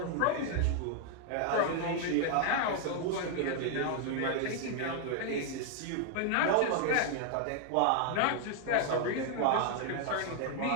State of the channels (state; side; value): different; both; correlation 0.00